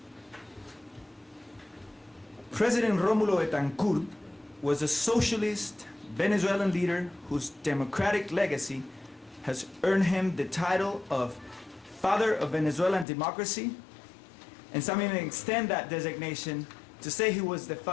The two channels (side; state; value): right; drops out; at 13.1 s